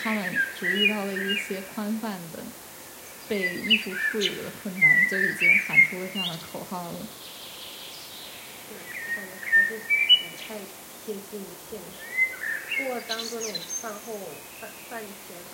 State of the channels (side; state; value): both; identical; correlation 1.00